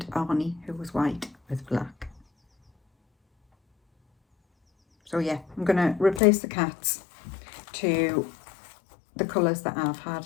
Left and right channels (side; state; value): right; drops out; at 6.2 s